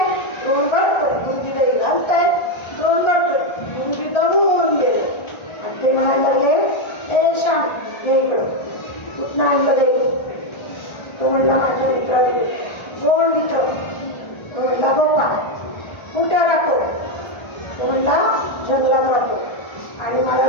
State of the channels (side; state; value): right; late; 1.3 ms